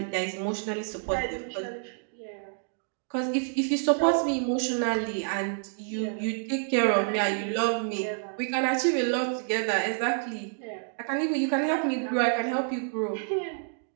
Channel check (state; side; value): silent; left; digital silence